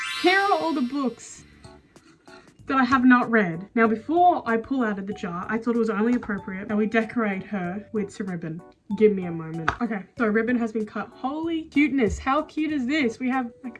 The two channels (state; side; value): identical; both; correlation 1.00